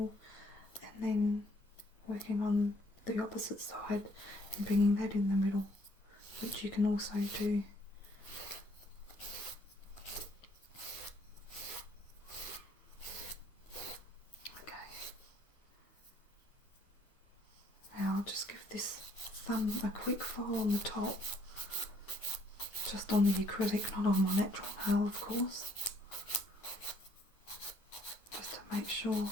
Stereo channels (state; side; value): normal; both; correlation 0.65